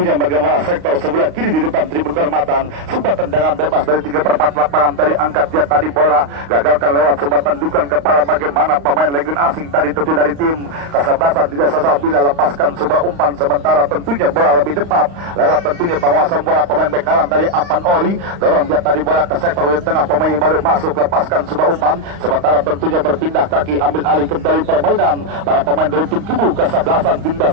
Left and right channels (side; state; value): left; late; 35 ms